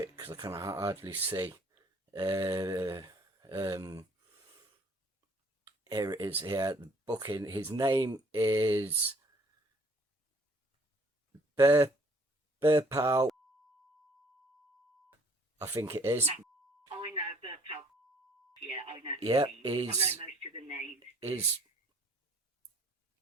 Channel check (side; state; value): both; normal; correlation 0.58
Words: because I can hardly see. Here it is. Here, the booking. His name is Burpal. I think it is. I know Burpal. Yeah, I know. Yeah, I know most of the names. His